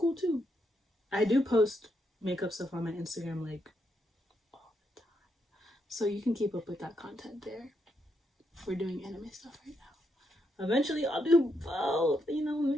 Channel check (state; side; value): normal; both; correlation 0.79